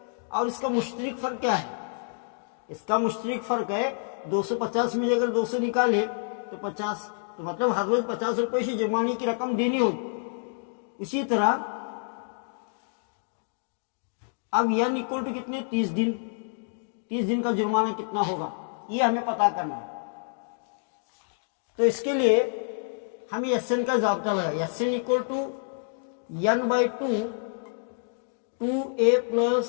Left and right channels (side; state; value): right; silent; digital silence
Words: और इसका मुश्तरक फ़र्क क्या है, इसका मुश्तरक फ़र्क है 250 में अगर 200 निकाले तो 50, तो मतलब हर रोज़ 50 रुपये से जुर्माने की रकम देनी होगी। इसी तरह अब n इक्वल टू कितने, 30 दिन, 30 दिन का जुर्माना कितना होगा ये हमें पता करना है। तो इसके लिए हमें SN का ज़ाब्ता लगा। SN equal to n/2 2a plus